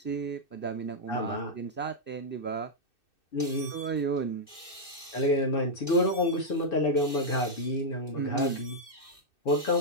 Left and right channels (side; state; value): right; late; 2.6 ms